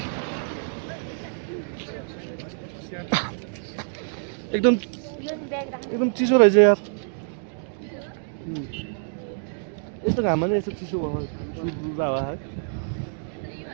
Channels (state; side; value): silent; left; digital silence